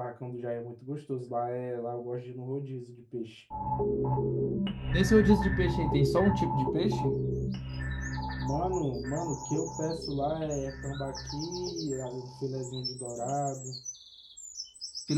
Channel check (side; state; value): both; identical; correlation 1.00